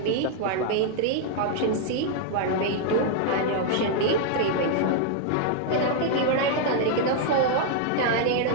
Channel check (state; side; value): different; both; correlation 0.00